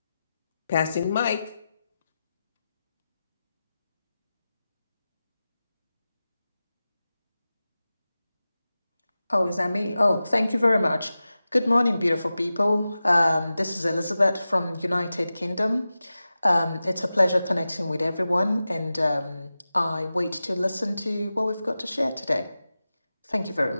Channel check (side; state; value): both; inverted; correlation -0.94